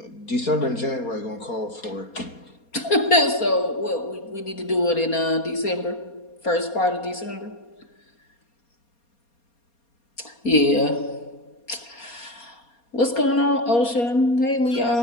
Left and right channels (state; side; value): late; right; 4.3 ms